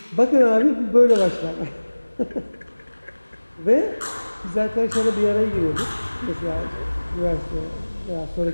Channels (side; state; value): both; inverted; correlation -1.00